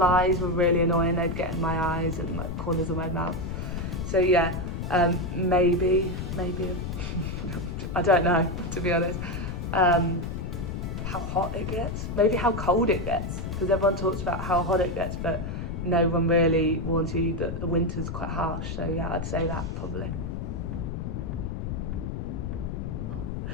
were really annoying. They'd get in my eyes and like corners of my mouth. So yeah, maybe, I don't know, to be honest. How hot it gets, maybe how cold it gets, because everyone talks about how hot it gets, but no one really warns you that the winter's quite harsh. So yeah, I'd say that probably.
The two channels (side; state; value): left; noise; rumble, 4 dB below the sound